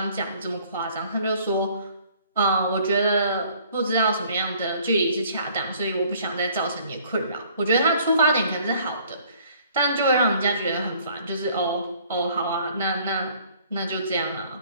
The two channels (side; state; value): both; inverted; correlation -0.58